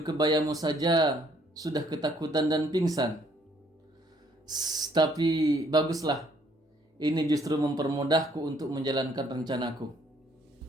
kebayamu saja, sudah ketakutan dan pingsan. Tapi baguslah. Ini justru mempermudahku untuk menjalankan rencanaku.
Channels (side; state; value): both; normal; correlation 0.65